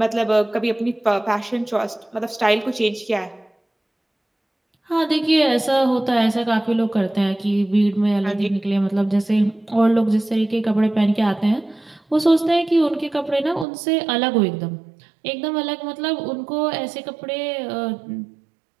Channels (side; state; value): left; drops out; at 13.7 s